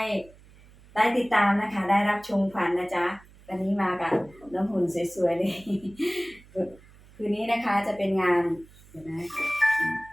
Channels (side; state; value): right; noise; hum, 24 dB below the sound